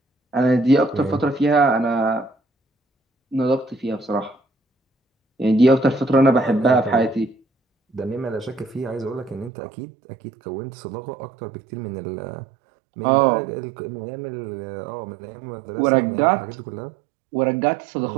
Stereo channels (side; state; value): left; drops out; at 9.5 s